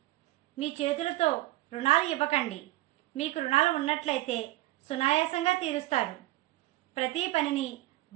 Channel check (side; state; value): left; quieter; 17.8 dB